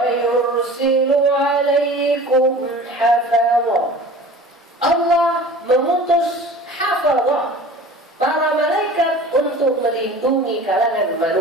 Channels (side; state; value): both; normal; correlation 0.41